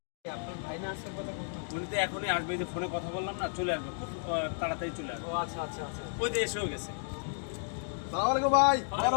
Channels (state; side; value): silent; right; digital silence